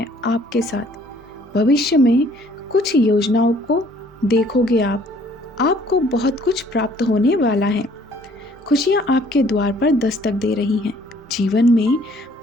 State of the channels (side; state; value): both; normal; correlation 0.59